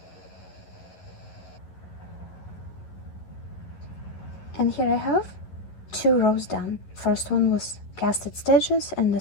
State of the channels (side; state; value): right; late; 11 ms